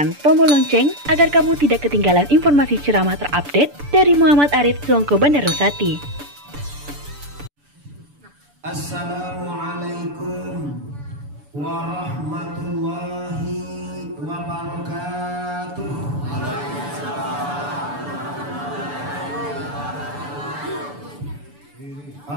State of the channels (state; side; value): late; left; 6.9 ms